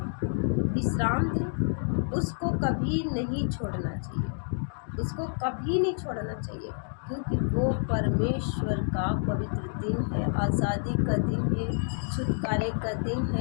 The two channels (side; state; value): right; silent; digital silence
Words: विश्राम दिन, उसको कभी नहीं छोड़ना चाहिए, उसको कभी नहीं छोड़ना चाहिए, क्योंकि वो परमेश्वर का पवित्र दिन है, आज़ादी का दिन है, छुटकारे का दिन